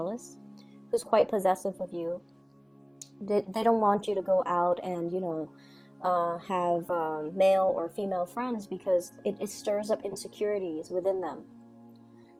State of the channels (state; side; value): identical; both; correlation 1.00